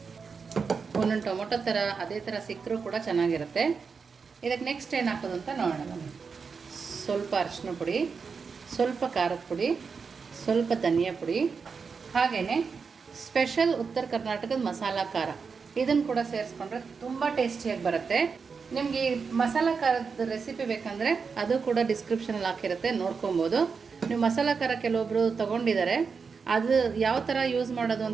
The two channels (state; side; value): quieter; left; 5.4 dB